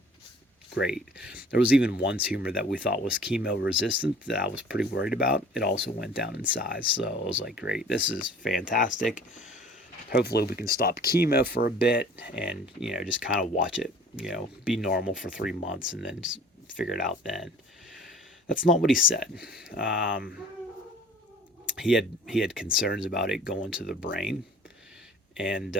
great. There was even one tumor that we thought was chemo resistant that I was pretty worried about. It also went down in size. So I was like, great, this is fantastic. Hopefully we can stop chemo for a bit and, just kind of watch it, be normal for 3 months and then just figure it out then. That's not what he said. He had concerns about it going to the brain, and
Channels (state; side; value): normal; both; correlation 0.49